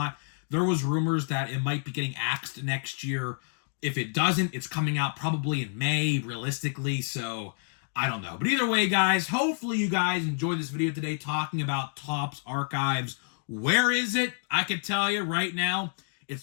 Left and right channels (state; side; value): silent; right; 59 dB below the other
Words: There was rumors that it might be getting axed next year. If it doesn't, it's coming out probably in May, realistically. So I don't know. But either way, guys, hopefully you guys enjoyed this video today talking about Topps Archives. Where is it? I can tell you right now,